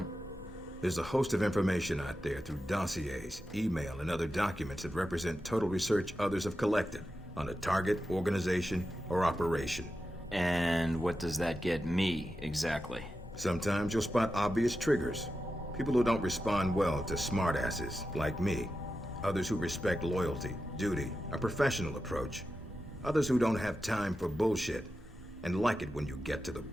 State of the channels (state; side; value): normal; both; correlation 0.91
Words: There's a host of information out there through dossiers, email, and other documents that represent total research others have collected on a target, organization, or operation. And what does that get me, exactly? Sometimes you'll spot obvious triggers. People who don't respond well to smartasses, like me. Others who respect loyalty, duty, a professional approach. Others who don't have time for bullshit, and like it when you get to the